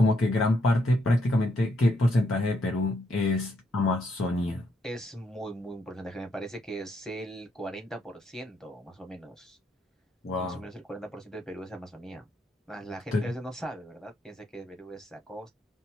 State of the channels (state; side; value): normal; both; correlation 0.76